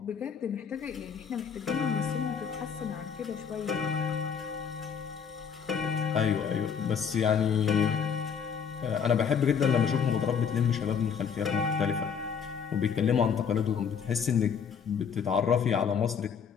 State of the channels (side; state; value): right; quieter; 7.0 dB